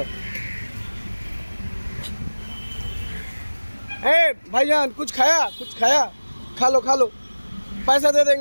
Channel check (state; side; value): inverted; both; correlation -1.00